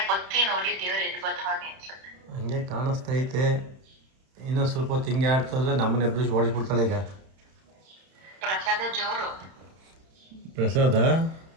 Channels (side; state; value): left; late; 31 ms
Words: ಹಂಗೆ ಕಾಣಿಸ್ತೈತೆ. ಇನ್ನೊಂದು ಸ್ವಲ್ಪ ಹೊತ್ತು ಹಿಂಗೆ ಆಡ್ತಂದ್ರೆ ನಮ್ಮನ್ನ ಎಬ್ಬಿಸಿ ಓಡಿಸ್ಬಿಡ್ತಾಳೆ ಈಗ. ಪ್ರಸಾದ